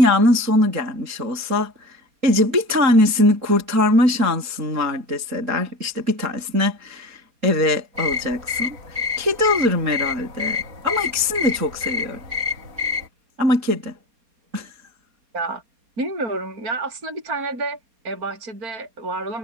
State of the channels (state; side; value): late; left; 3.8 ms